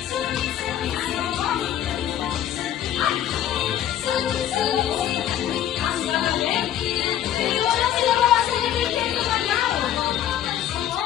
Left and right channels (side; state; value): right; quieter; 11.1 dB